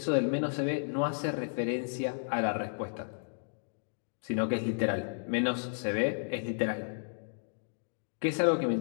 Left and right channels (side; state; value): right; silent; digital silence